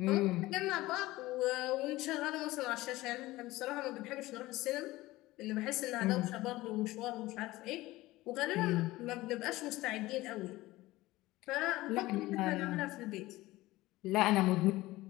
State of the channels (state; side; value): quieter; right; 18.4 dB